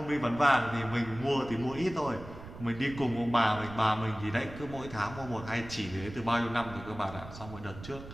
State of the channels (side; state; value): right; noise; rumble, 14 dB below the sound